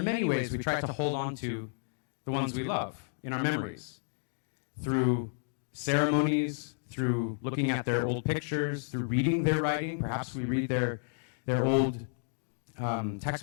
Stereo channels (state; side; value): silent; right; digital silence